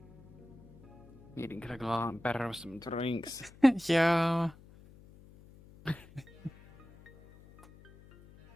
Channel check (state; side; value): noise; left; hum, 22 dB below the sound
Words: Meeting could have gone a lot better with some drinks. Yeah. I